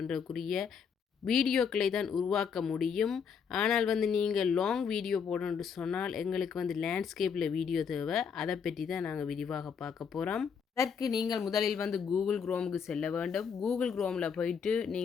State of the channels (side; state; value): right; quieter; 6.7 dB